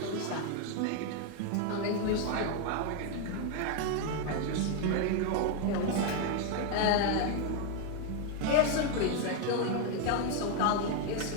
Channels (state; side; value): different; both; correlation 0.01